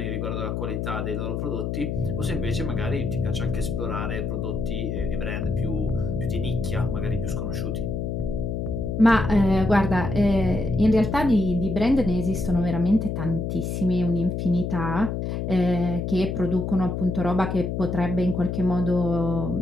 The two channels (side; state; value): left; noise; hum, 2 dB below the sound